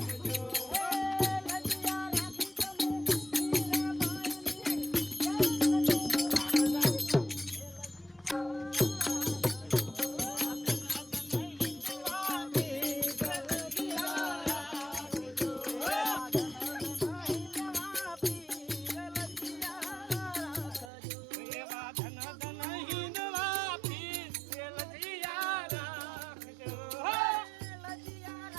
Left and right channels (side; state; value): left; drops out; at 20.9 s